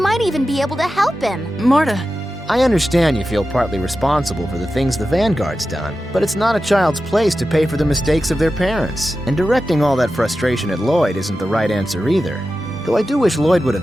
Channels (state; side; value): normal; both; correlation 0.92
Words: even be able to help him. Marta. I understand you feel partly responsible for the things the Vanguard's done, but it's not a child's place to pay for the mistakes of their parents. And directing all that frustration at Lloyd isn't the right answer either. Though I do wish Lloyd would